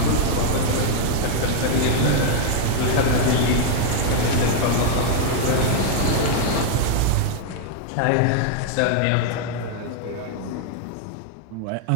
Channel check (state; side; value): different; both; correlation 0.00